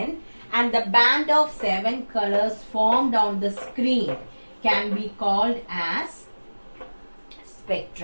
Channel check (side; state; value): both; inverted; correlation -1.00